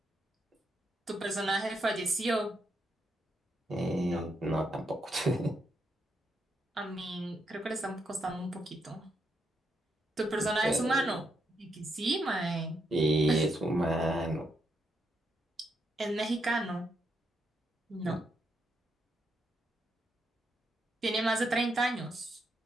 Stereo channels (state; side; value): normal; both; correlation 0.80